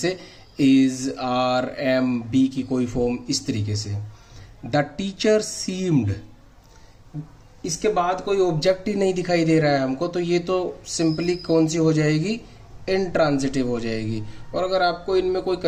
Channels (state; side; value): identical; both; correlation 1.00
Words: इज, आर, एम, बी की कोई फॉर्म, इस तरीके से। द टीचर सीम्ड, इसके बाद कोई ऑब्जेक्ट ही नहीं दिखाई दे रहा है हमको, तो ये तो सिंपली कौन सी हो जाएगी? इंट्रांजिटिव हो जाएगी। और अगर आपको इनमें कोई